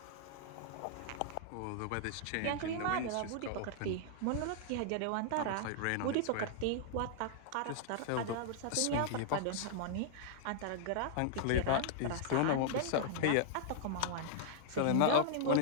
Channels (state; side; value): different; both; correlation -0.01